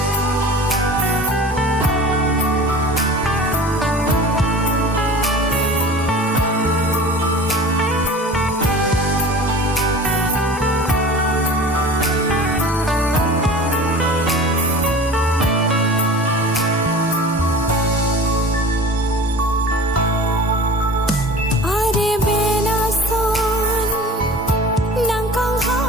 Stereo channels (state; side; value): normal; both; correlation 0.38